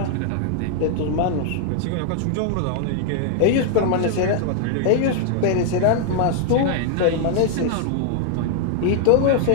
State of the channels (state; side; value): different; both; correlation 0.00